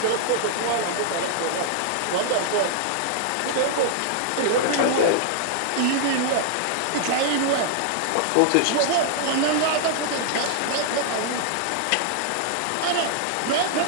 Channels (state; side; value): different; both; correlation -0.01